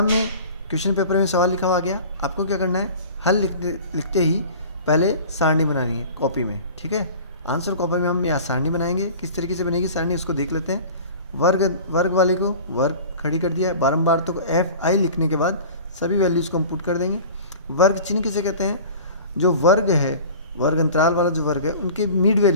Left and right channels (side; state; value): both; inverted; correlation -0.40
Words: में क्वेश्चन पेपर में सवाल लिखा हुआ गया, आपको क्या करना है, हल लिखते ही पहले सारणी बनानी है कॉपी में। ठीक है, आंसर कॉपी में हम यहाँ सारणी बनाएंगे। किस तरीके से बनेगी सारणी उसको देख लेते हैं। वर्ग वाले को वर्ग खड़ी कर दिया है, बारंबार तो FI लिखने के बाद सभी वैल्यूज़ को हम पुट कर देंगे। वर्ग चिन्ह किसे कहते हैं, जो वर्ग है, वर्ग अंतराल वाला जो वर्ग है उनके मिड